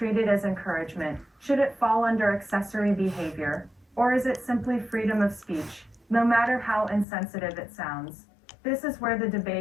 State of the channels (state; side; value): drops out; right; at 7.1 s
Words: as encouragement? Should it fall under accessory behavior? Or is it simply freedom of speech, no matter how insensitive it sounds? This is where the